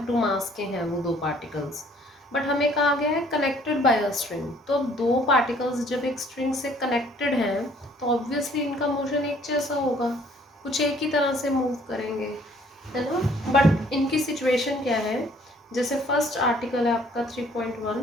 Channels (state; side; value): normal; both; correlation 0.59